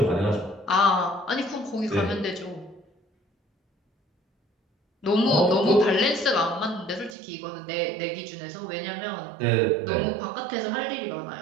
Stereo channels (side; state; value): left; drops out; at 7.2 s